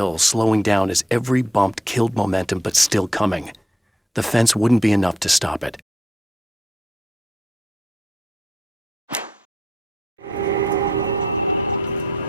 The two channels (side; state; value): both; normal; correlation 0.74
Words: slowing down as every bump killed momentum but still coming. The fence wouldn't be enough to stop it.